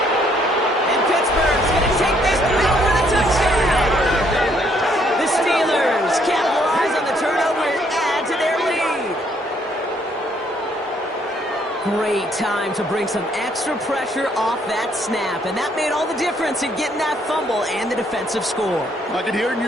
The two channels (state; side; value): normal; both; correlation 0.68